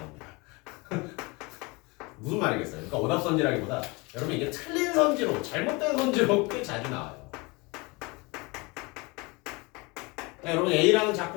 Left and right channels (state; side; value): quieter; right; 26.5 dB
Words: 무슨 말이겠어요? 그러니까 오답선지라기보다 여러분 이게 틀린 선지로 잘못된 선지로 꽤 자주 나와요. 여러분 A라는